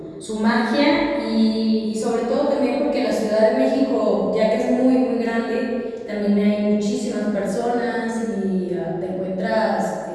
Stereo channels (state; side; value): identical; both; correlation 1.00